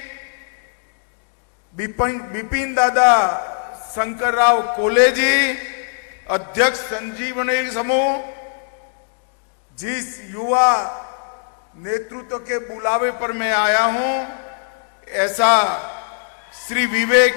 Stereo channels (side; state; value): right; silent; digital silence